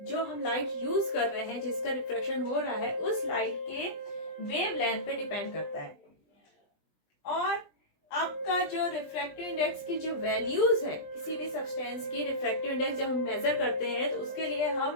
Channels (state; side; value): late; right; 20 ms